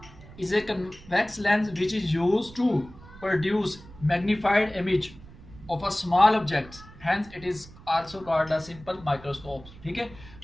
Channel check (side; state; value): right; noise; rumble, 19 dB below the sound